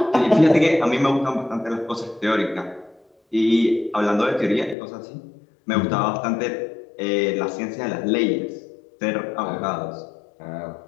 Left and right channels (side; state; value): right; drops out; at 4.8 s